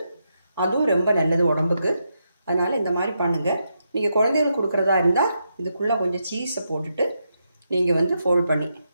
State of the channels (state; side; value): inverted; both; correlation -0.83